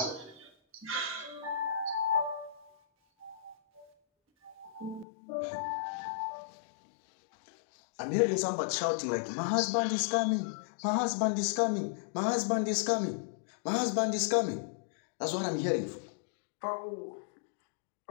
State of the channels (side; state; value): right; drops out; at 5.1 s